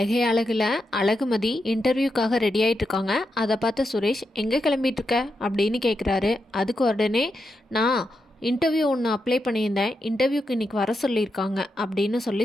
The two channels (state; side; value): normal; both; correlation 0.86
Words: அழகில் அழகுமதி இன்டர்வியூக்காக ரெடி ஆகிட்டு இருக்காங்க. அதை பார்த்த சுரேஷ் எங்கே கிளம்பிட்டுருக்க அப்படின்னு கேட்குறாரு. அதுக்கு உடனே நான் இன்டர்வியூ ஒன்று அப்ளை பண்ணியிருந்தேன், இன்டர்வியூக்கு இன்றைக்கி வர சொல்லியிருக்காங்க அப்படின்னு